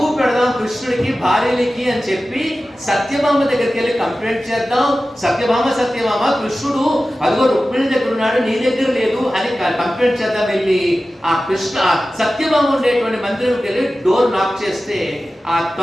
పెడదాం కృష్ణుడికి, భార్యలకి అని చెప్పి సత్యభామ దగ్గరికి వెళ్ళి కంప్లైంట్ చేద్దాం. సత్యభామ కృష్ణుడు అదిగో రుక్మిణి దగ్గర ఉన్నాడు, నీ దగ్గర లేదు అని కంప్లైంట్ చేద్దాం. వెళ్ళి ఆ సత్యభామ ఉండేటువంటి మందిరంకి వెళ్ళి డోర్ నాక్ చేస్తే ఆ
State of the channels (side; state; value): both; normal; correlation 0.95